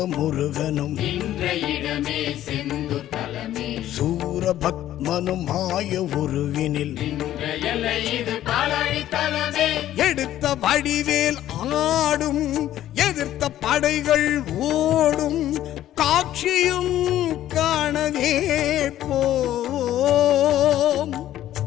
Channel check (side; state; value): right; quieter; 12.8 dB